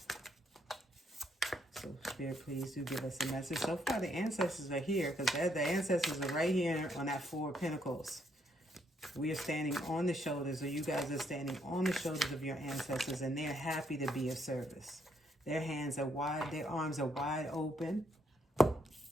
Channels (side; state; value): both; normal; correlation 0.73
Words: So Spirit, please do give us a message. So far the ancestors are here, because the ancestors are right here on that 4 of Pentacles. We are standing on the shoulders, or you guys are standing on the shoulders of your ancestors, and they're happy to be of service. Their hands are wide, their arms are wide open,